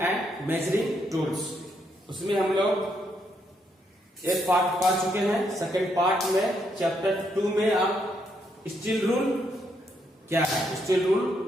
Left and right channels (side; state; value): both; normal; correlation 0.76